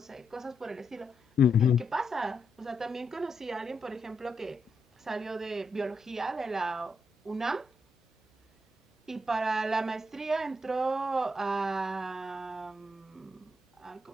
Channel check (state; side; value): normal; both; correlation 0.81